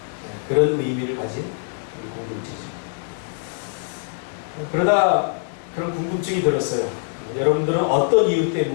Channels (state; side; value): silent; right; digital silence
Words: 그런 의미를 가진 우리 공동체죠. 그러다 그런 궁금증이 들었어요. 여러분들은 어떤 이유